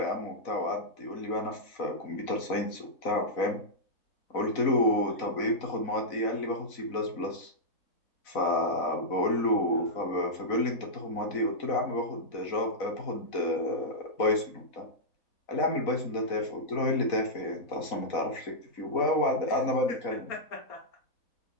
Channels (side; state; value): right; late; 4.0 ms